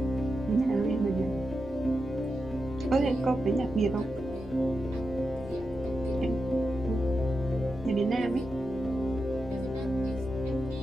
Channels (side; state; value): both; normal; correlation 0.88